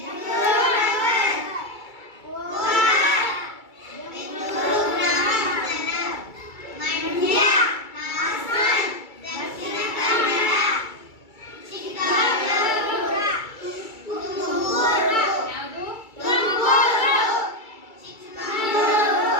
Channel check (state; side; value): late; right; 2.3 ms